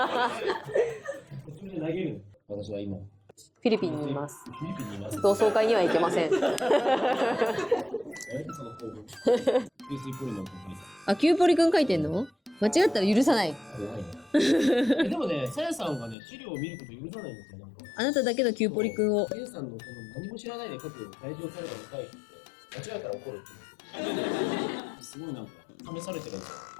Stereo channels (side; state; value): right; drops out; at 16.2 s